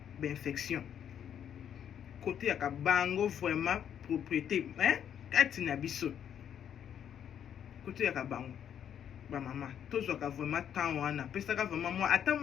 bainfection kote yaka bango vraiment propriété kati na biso kote yaka bango bamama tozwaka vraiment temps wana pesaka vraiment moi ata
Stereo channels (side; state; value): right; quieter; 9.1 dB